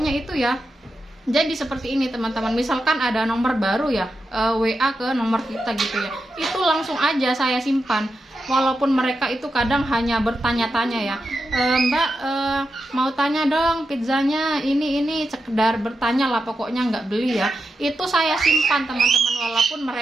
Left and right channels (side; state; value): both; normal; correlation 0.88